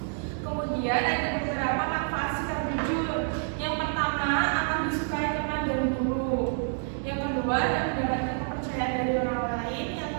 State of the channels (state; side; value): silent; left; 59 dB below the other